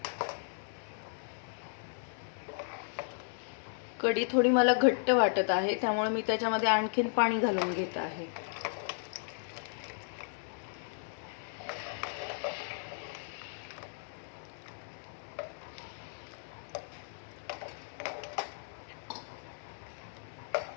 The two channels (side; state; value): right; silent; 54 dB below the other